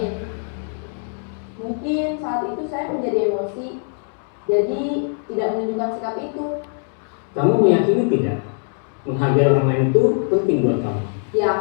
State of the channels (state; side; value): silent; right; 56 dB below the other